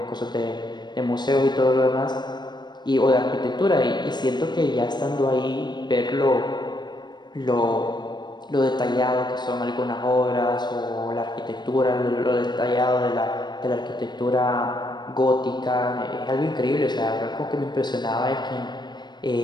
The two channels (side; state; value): right; late; 0.21 ms